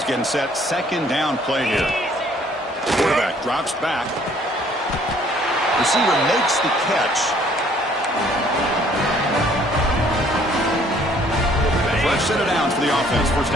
getting set. 2nd down play here. Quarterback drops back. Receiver makes the catch. Fresh set of downs for the offense. 1st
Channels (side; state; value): both; normal; correlation 0.60